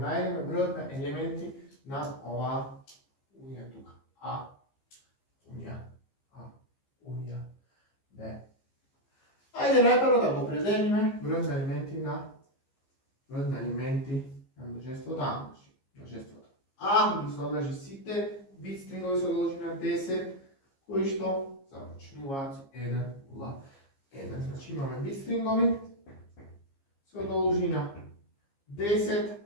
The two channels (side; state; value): right; late; 15 ms